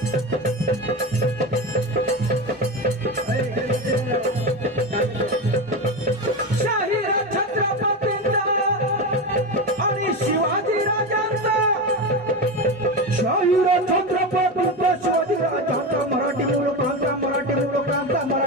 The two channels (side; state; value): both; normal; correlation 0.19